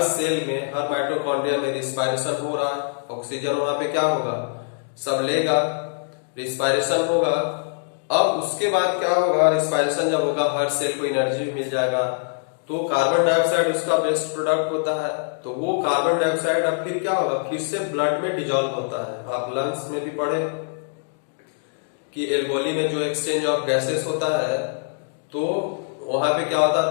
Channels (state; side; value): silent; right; digital silence